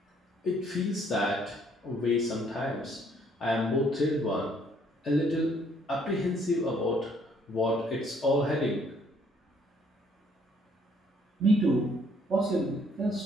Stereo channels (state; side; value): normal; both; correlation 0.65